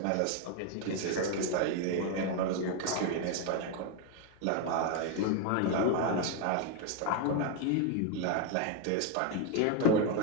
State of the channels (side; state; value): both; different; correlation 0.01